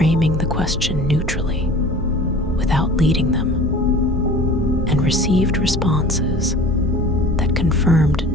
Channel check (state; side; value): normal; both; correlation 0.42